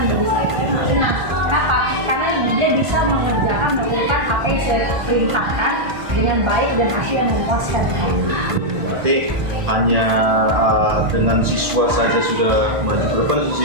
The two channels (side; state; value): left; late; 1.5 ms